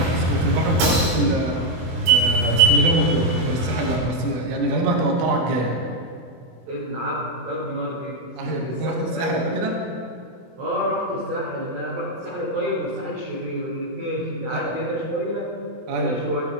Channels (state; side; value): late; left; 24 ms